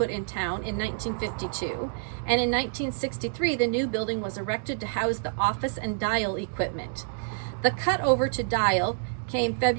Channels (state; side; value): silent; left; digital silence